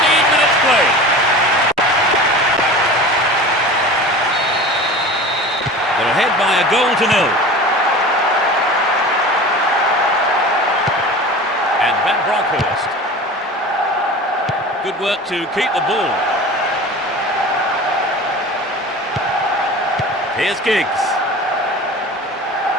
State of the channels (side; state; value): both; normal; correlation 0.36